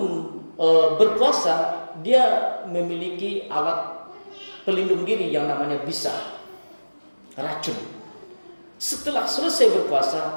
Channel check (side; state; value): both; inverted; correlation -1.00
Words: berpuasa, dia memiliki alat pelindung diri yang namanya bisa, racun. Setelah selesai